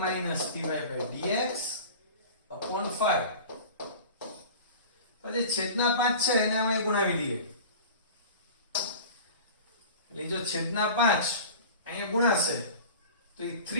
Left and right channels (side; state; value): both; inverted; correlation -0.38